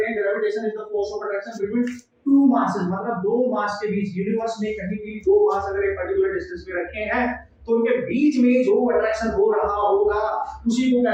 हैं, gravitation is the force of attraction between two masses, मतलब दो मास के बीच। यूनिवर्स में कहीं भी दो मास अगर एक पर्टिकुलर डिस्टेंस पे रखे हैं तो उनके बीच में जो अट्रैक्शन हो रहा होगा उसी को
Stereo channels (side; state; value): both; identical; correlation 1.00